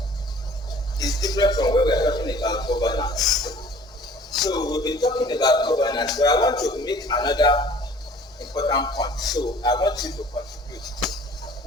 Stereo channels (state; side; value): normal; both; correlation 0.50